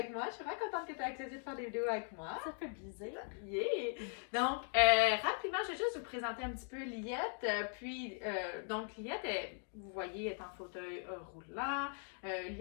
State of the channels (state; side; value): silent; right; 51 dB below the other